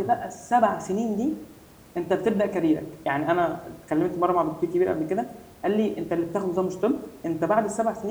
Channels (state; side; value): identical; both; correlation 1.00